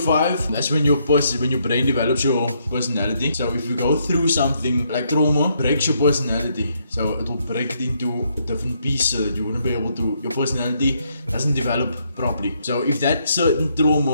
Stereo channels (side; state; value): both; inverted; correlation -0.74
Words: 5, that's when your brain develops your personality. So if you go through something like trauma, breaks your personality. So it will break it into a different piece so that you wouldn't be able to, your personality doesn't develop properly. So if that certain